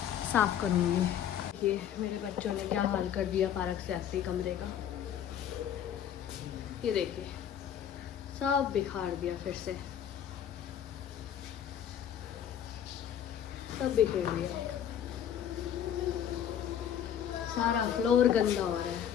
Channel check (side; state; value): right; quieter; 9.5 dB